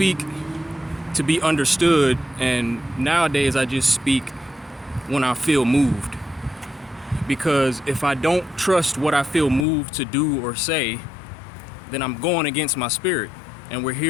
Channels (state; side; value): drops out; right; at 9.7 s